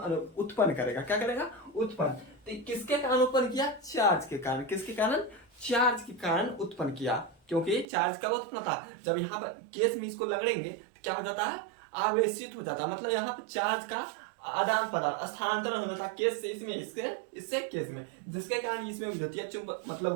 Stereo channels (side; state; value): left; drops out; at 7.9 s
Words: करेगा। क्या करेगा, उत्पन्न। तो किसके कारण उत्पन्न किया, चार्ज के कारण। किसके कारण, चार्ज के कारण उत्पन्न किया। क्योंकि चार्ज कब उत्पन्न होता, जब यहाँ पर केस में इसको लगड़ेंगे तो क्या हो जाता है, आवेशित हो जाता है। मतलब यहाँ पर चार्ज का आदान प्रदान, स्थानांतरण हो जाता है केस से इसमें, इससे केस में, जिसके कारण इसमें विद्युतीय